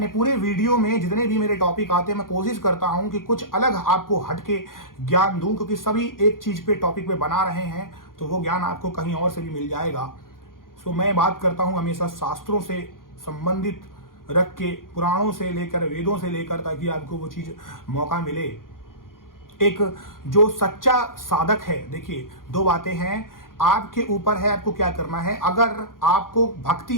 पूरे वीडियो में जितने भी मेरे टॉपिक आते हैं, मैं कोशिश करता हूं कि कुछ अलग आपको हटके ज्ञान दूं, क्योंकि सभी एक चीज पे टॉपिक पे बना रहे हैं तो वो ज्ञान आपको कहीं और से भी मिल जाएगा। सो मैं बात करता हूं हमेशा शास्त्रों से संबंधित रख के, पुराणों से लेकर, वेदों से लेकर, ताकि आपको वो चीज मौका मिले। एक जो सच्चा साधक है, देखिए 2 बातें हैं, आपके ऊपर है आपको क्या करना है। अगर आपको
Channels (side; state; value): right; late; 0.90 ms